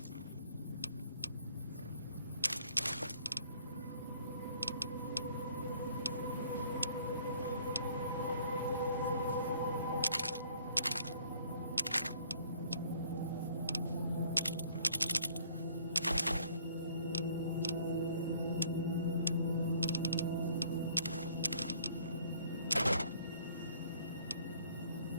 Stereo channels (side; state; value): both; inverted; correlation -0.59